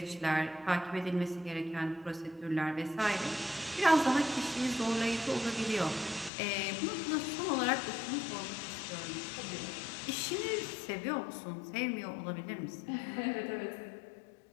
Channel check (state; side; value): drops out; right; at 6.3 s